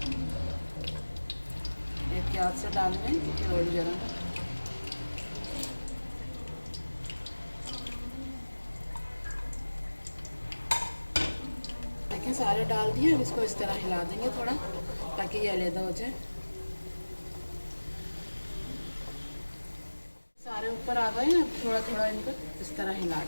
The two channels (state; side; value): inverted; both; correlation -1.00